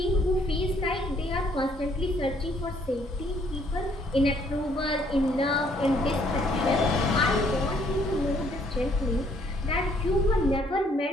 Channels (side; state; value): both; normal; correlation 0.65